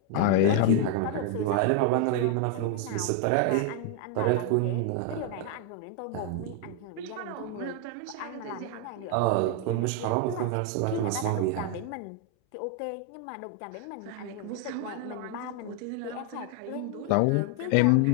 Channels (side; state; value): both; different; correlation 0.01